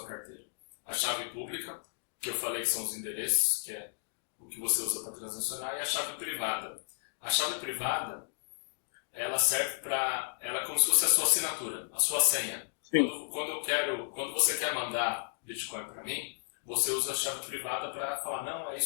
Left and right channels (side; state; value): right; silent; digital silence